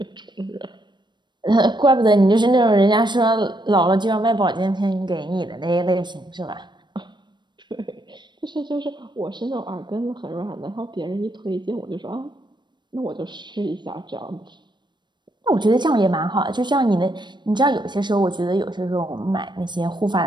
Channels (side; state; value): left; late; 0.22 ms